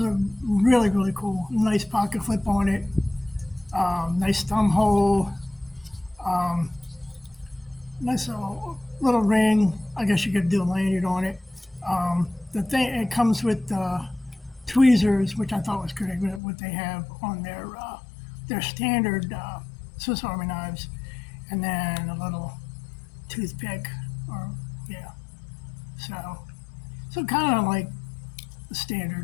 a really cool, nice pocket flip on it. Nice thumb hole. Nice little ring. I guess you could do a lanyard on it. The thing, it comes with tweezers, which I thought was great. What they have on their standard Swiss Army knives, and then a little toothpick, or yeah. So kind of like the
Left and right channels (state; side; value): drops out; right; at 16.4 s